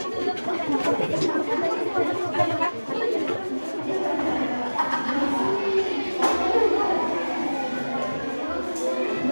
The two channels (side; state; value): both; inverted; correlation -1.00